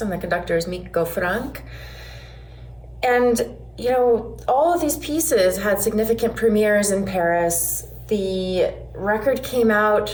and the conductor is Miko Frank. And, you know, all of these pieces had significant premieres in Paris. The record came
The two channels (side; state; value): both; identical; correlation 1.00